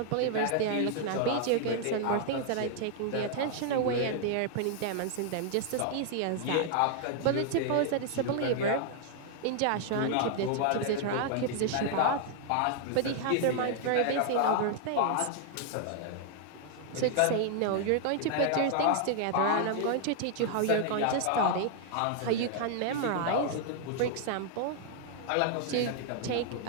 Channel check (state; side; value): different; both; correlation -0.01